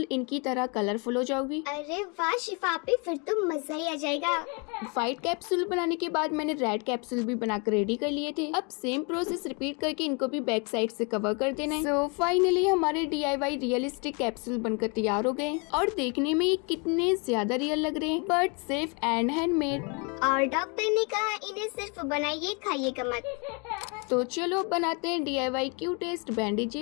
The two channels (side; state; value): right; quieter; 33.2 dB